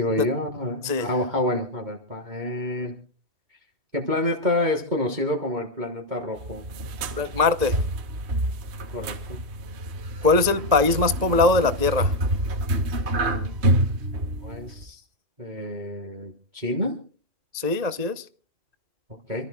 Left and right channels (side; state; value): left; late; 2.0 ms